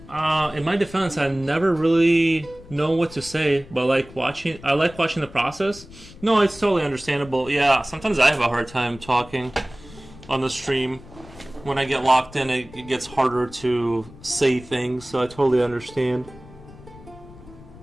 In my defense, I never really know what to say, but I like watching the process. No, it's totally understandable. Yeah, sometimes I have a hard time talking on the stream. When I get locked in, it gets harder to say things, so I totally understand.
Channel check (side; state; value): left; noise; rumble, 19 dB below the sound